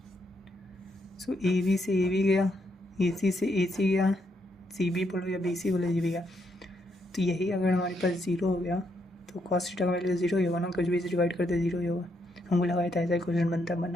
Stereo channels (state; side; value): normal; both; correlation 0.77